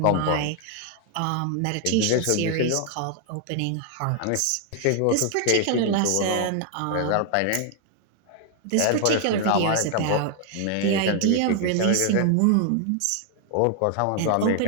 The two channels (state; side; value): different; both; correlation 0.00